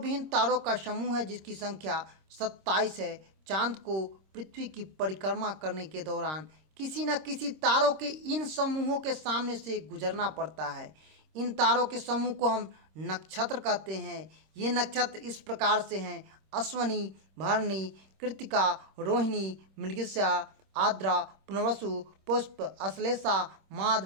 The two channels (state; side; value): late; left; 26 ms